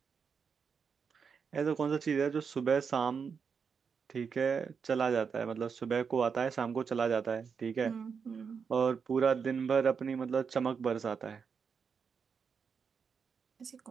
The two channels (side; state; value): left; quieter; 6.1 dB